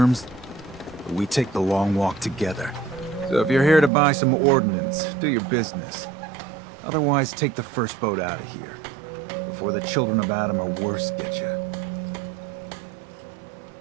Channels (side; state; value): left; drops out; at 3.9 s